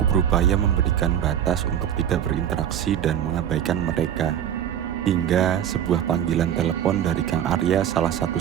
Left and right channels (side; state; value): left; quieter; 9.9 dB